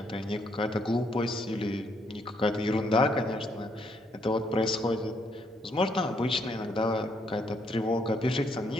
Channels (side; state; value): both; normal; correlation 0.72